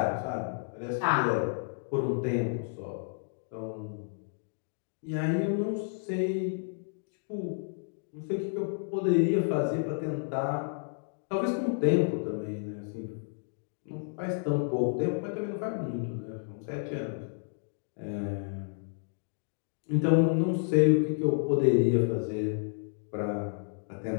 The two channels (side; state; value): right; silent; digital silence